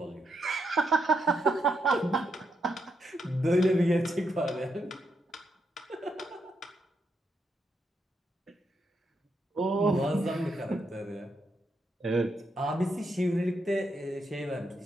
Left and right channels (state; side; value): normal; both; correlation 0.80